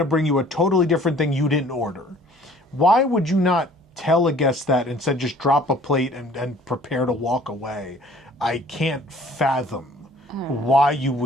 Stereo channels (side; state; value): both; normal; correlation 0.53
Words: bring you a totally different thing you didn't order." Why would you not tell a guest that, instead just drop a plate and prepare to walk away? I can't fathom why you